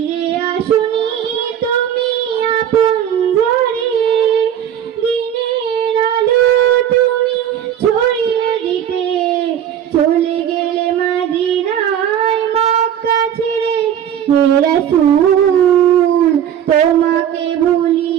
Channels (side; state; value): left; quieter; 9.8 dB